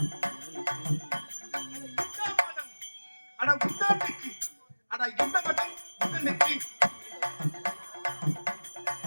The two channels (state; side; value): inverted; both; correlation -1.00